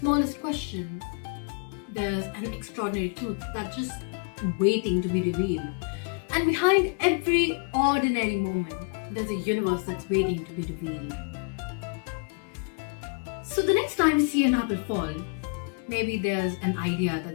question, there's an extraordinary truth that's just waiting to be revealed. And behind every ordinary moment, there's a universe that's waiting to be revealed. So the next time you see an apple fall, maybe there's an idea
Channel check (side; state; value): right; quieter; 38.6 dB